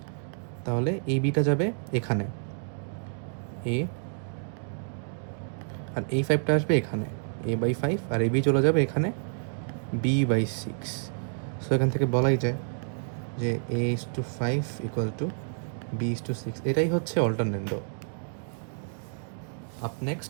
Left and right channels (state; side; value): silent; left; digital silence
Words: তাহলে এই বিটা যাবে এখানে এ, আর এই 5টা আসবে এখানে a/5, আর এই বি চলে যাবে এখানে b/6। সো এখান থেকে বলাই যায় যে a/5 ইকুয়াল টু b/6। এটাই হচ্ছে অল্টারনেন্ডো। আপ